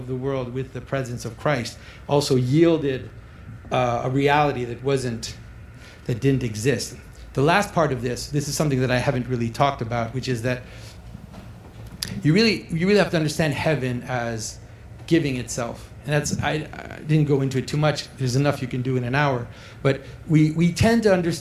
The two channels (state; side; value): identical; both; correlation 1.00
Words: the world with the presence of Christ also yielded a reality that didn't exist. The last part of this is something that I haven't really talked about, which is that you really have to understand heaven as giving itself. And I didn't go into it too much. There's enough you can do in an hour. But we tend to